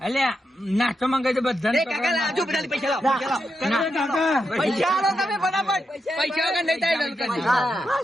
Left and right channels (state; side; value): normal; both; correlation 0.85